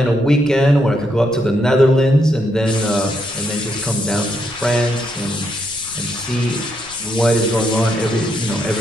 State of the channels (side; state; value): left; noise; rumble, 22 dB below the sound